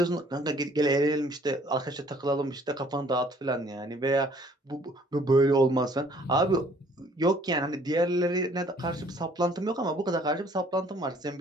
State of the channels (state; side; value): normal; both; correlation 0.58